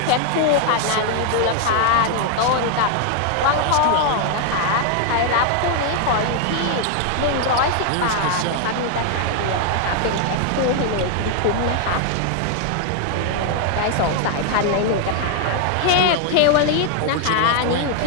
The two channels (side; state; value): both; different; correlation 0.00